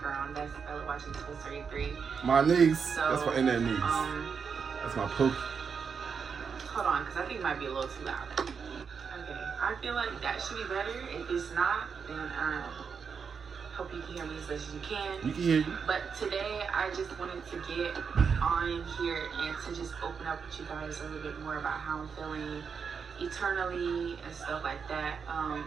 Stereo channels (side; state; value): left; quieter; 6.1 dB